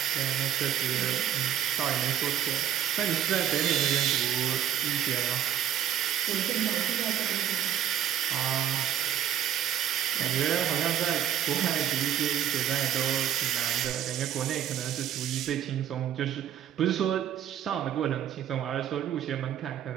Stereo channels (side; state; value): left; quieter; 10.3 dB